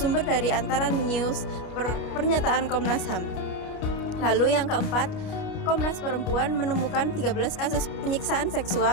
dari Antara News, pernyataan Komnas HAM. Lalu yang keempat, Komnas Perempuan menemukan 13 kasus penyiksaan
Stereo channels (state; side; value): late; right; 29 ms